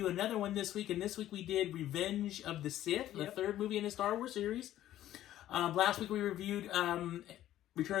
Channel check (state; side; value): quieter; right; 13.1 dB